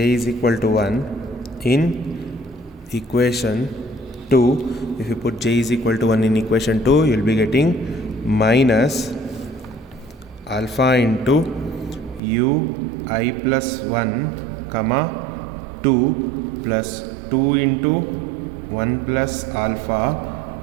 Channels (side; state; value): left; drops out; at 12.2 s